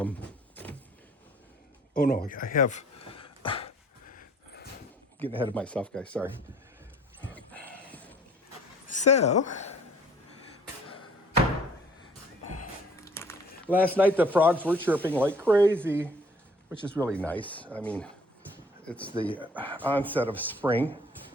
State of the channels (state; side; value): normal; both; correlation 0.56